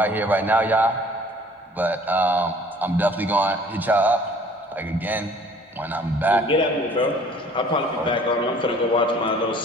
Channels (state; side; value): normal; both; correlation 0.53